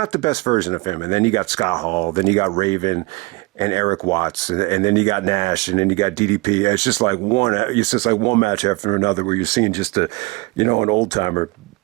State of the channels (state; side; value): quieter; left; 24.5 dB